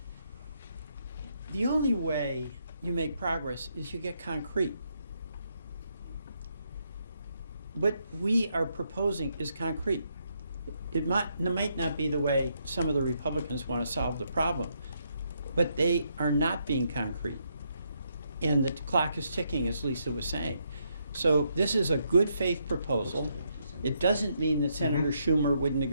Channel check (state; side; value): inverted; both; correlation -0.77